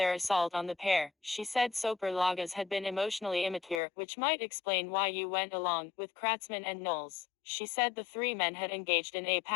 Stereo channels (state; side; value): drops out; right; at 3.8 s